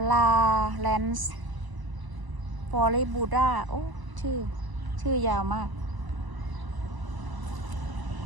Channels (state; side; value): late; left; 1.0 ms